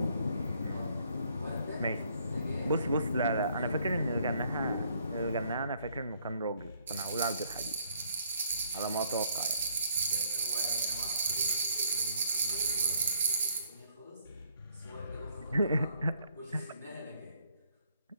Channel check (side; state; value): both; inverted; correlation -0.67